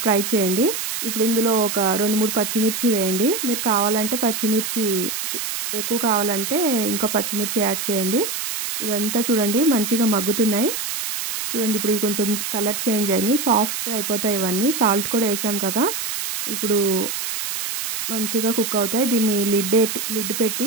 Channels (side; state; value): right; noise; hiss, 4 dB below the sound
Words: ఫ్రై చేయండి. ఇప్పుడు ఇందులో ఒక 2-3 పచ్చిమిర్చి వేయండి. మీరు కావాలంటే పచ్చిమిర్చి ఎక్కువ కావాలంటే ఇంకా పచ్చిమిర్చి యాడ్ చేయండి. ఇదంతా చూడండి మంచిగా మగ్గుతున్నాయి. చూడండి ఇప్పుడు ఇవి కొంచెం కలర్ చేంజ్ అయినాయి, సాఫ్ట్ అయిపోతాయి ఇవన్నీ. సాల్ట్ కూడా వేసాం కదా, ఇప్పుడు మంచిగా కుక్ అవుతాయి. దీన్ని లిడ్ పెట్టి